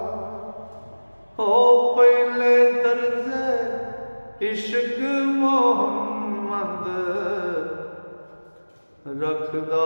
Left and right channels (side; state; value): both; inverted; correlation -1.00